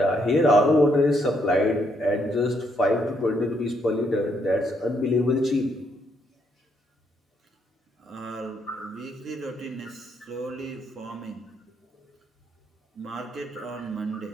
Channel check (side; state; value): both; normal; correlation 0.74